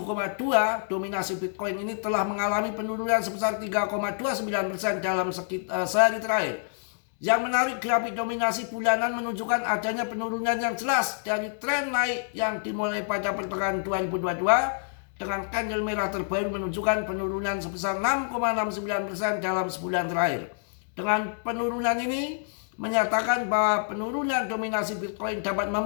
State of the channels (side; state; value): right; silent; 60 dB below the other